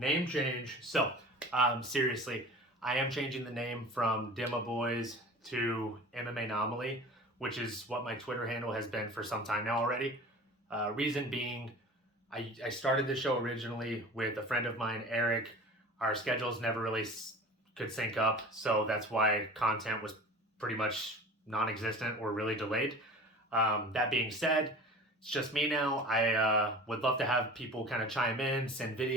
change. Seriously, I am changing the name from Dema Boys to MMAnomaly, which is what my Twitter handle has been for some time now already. Reason being, I started the show originally with a friend of mine, Eric. Our schedules never really could sync up, so that's why content was pretty much non-existent or really delayed. That being said, it's just me now. I would love to have people kind of chime in, send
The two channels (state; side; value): normal; both; correlation 0.39